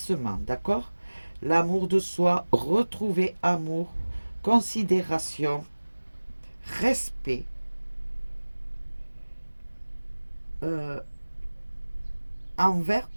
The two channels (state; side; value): inverted; both; correlation -1.00